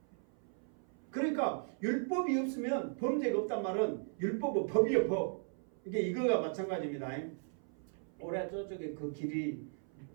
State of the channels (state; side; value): silent; left; 53 dB below the other